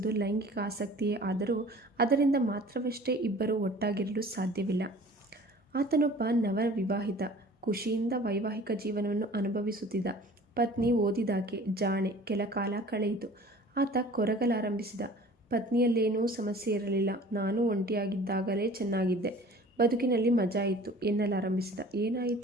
ಲೈಂಗಿಕ ಆಸಕ್ತಿಯೇ ಆದರೂ ಅದರಿಂದ ಮಾತ್ರವಷ್ಟೇ ಇಬ್ಬರು ಒಟ್ಟಾಗಿರಲು ಸಾಧ್ಯವಿಲ್ಲ. ಆತನೊಬ್ಬ ನವವಿವಾಹಿತ, ಖುಷಿಯಿಂದ ವೈವಾಹಿಕ ಜೀವನವನ್ನು ಅನುಭವಿಸುತ್ತಿದ್ದ. ಪತ್ನಿ ಓದಿದಾಕೆ, ಜಾಣೆ. ಕೆಲ ಕಾಲ ಕಳೆಯಿತು. ಆತ ಕೊರಗಲಾರಂಭಿಸಿದ. ಪತ್ನಿಯಲ್ಲೇನೂ ಸಮಸ್ಯೆ ಇರಲಿಲ್ಲ. ನಾನು ಒಂಟಿಯಾಗಿದ್ದಾಗಲೇ ಚೆನ್ನಾಗಿದ್ದೆ, ಬದುಕಿನಲ್ಲಿ ಮಜಾ ಇತ್ತು ಎನ್ನಲಾರಂಭಿಸಿದ.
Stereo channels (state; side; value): normal; both; correlation 0.46